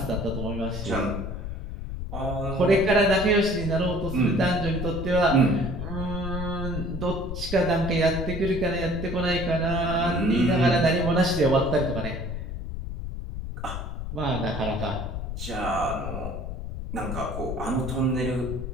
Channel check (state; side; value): noise; left; rumble, 6 dB below the sound